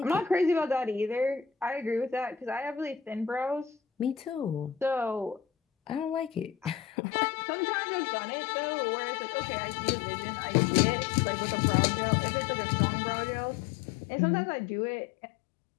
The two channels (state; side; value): drops out; right; at 6.9 s